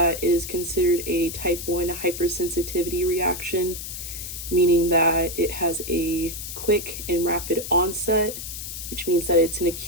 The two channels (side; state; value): left; noise; hiss, 8 dB below the sound